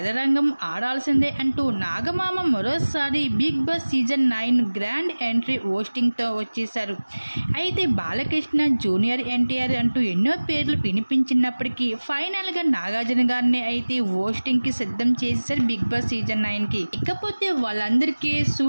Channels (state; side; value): inverted; both; correlation -1.00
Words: ఆడాల్సిందే అంటూ నాగమామ మరోసారి big boss season 9 grand entry హోస్టింగ్తో వచ్చేశారు. అయితే బాలకృష్ణ, జూనియర్ ఎన్టీఆర్ అంటూ ఎన్నో పేర్లు వినిపించినప్పటికీ ఫైనల్గా నాగార్జున గారిని అయితే హోస్టింగ్కి సిద్ధం చేసేశారు బిగ్ బాస్ సీజన్ 9కి. ఇకపోతే వాళ్ళందరికీ